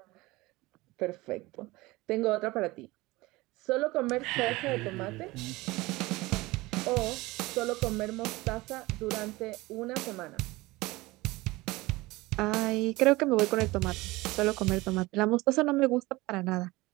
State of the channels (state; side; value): quieter; left; 20.8 dB